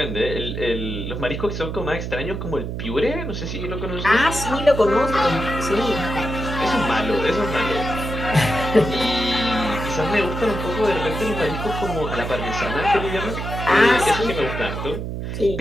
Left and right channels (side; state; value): right; noise; hum, 5 dB below the sound